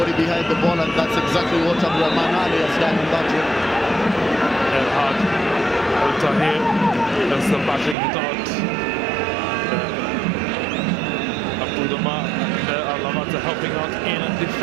behind the ball, and that's exactly what Abdulrahman Ali has done in that one. El Had, El Tahir, just battling it out. And Abudama and Alamata helping out in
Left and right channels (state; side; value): drops out; left; at 8.0 s